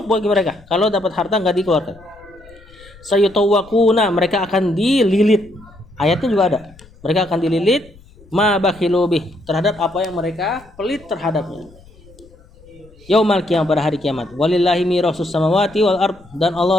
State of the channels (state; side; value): noise; left; rumble, 25 dB below the sound